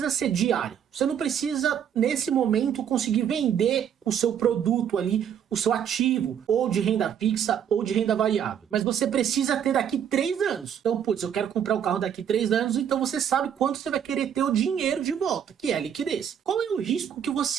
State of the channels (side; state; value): left; quieter; 8.8 dB